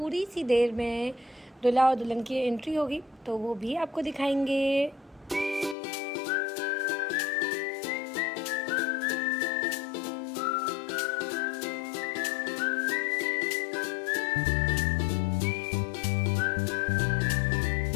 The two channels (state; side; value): drops out; right; at 5.8 s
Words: सी देर में दूल्हा और दुल्हन की एंट्री होगी तो वो भी आपको दिखाएंगे।